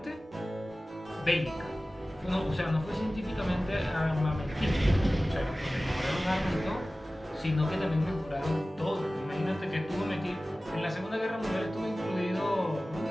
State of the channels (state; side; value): normal; both; correlation 0.97